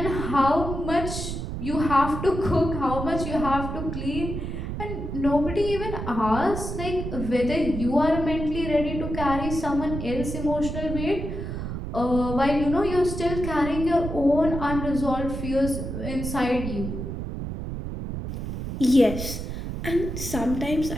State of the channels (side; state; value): right; noise; rumble, 5 dB below the sound